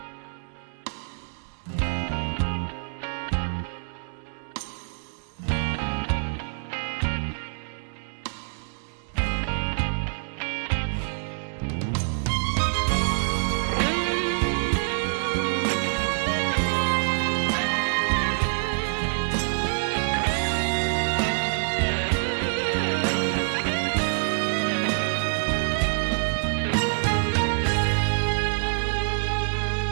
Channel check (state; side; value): silent; left; digital silence